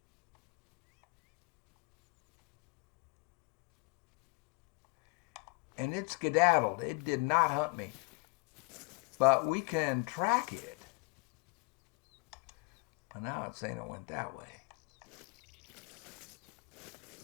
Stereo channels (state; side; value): quieter; right; 29.9 dB